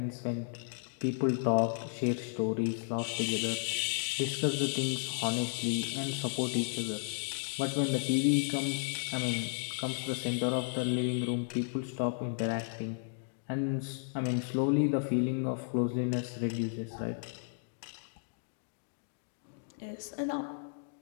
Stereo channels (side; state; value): right; silent; digital silence